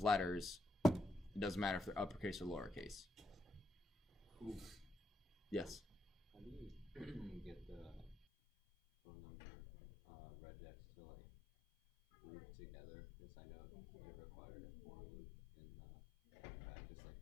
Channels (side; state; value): right; drops out; at 8.2 s